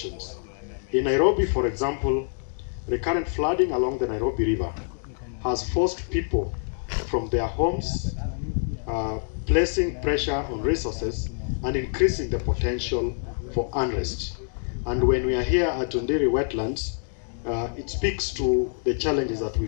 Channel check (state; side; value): silent; right; digital silence